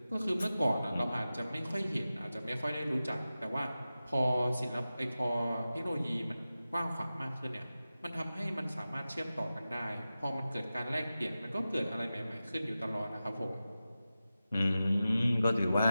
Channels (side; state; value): both; inverted; correlation -0.94